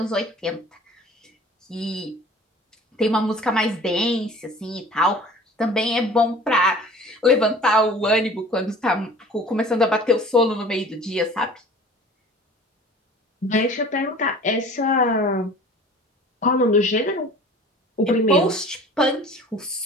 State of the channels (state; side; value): normal; both; correlation 0.45